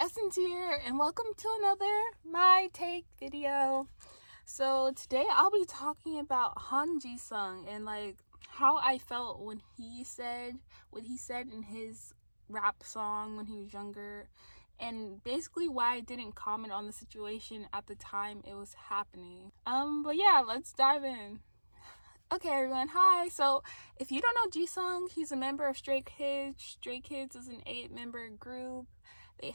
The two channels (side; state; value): both; inverted; correlation -1.00